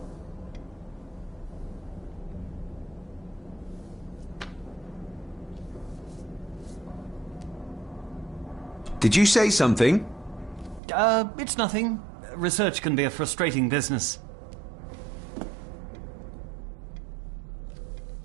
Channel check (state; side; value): drops out; left; at 10.8 s